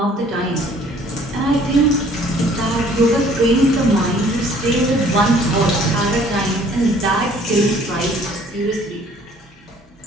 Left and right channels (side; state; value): both; normal; correlation 0.56